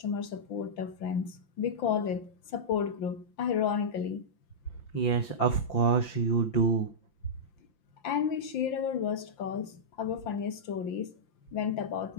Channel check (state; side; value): late; right; 5.9 ms